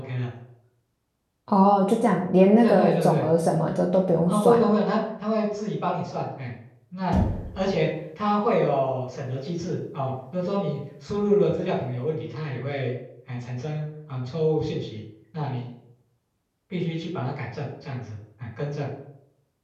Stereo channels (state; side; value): identical; both; correlation 1.00